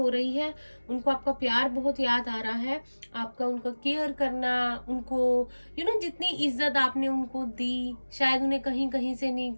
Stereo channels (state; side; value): inverted; both; correlation -1.00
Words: रही है, उनको आपका प्यार बहुत याद आ रहा है, आपका उनका केयर करना, उनको जितनी इज्जत आपने उनको दी, शायद उन्हें कहीं कहीं से नहीं,